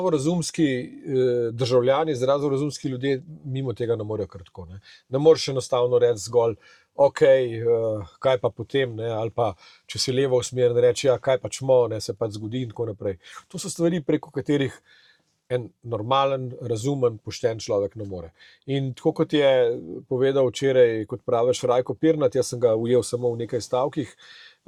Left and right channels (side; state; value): both; identical; correlation 1.00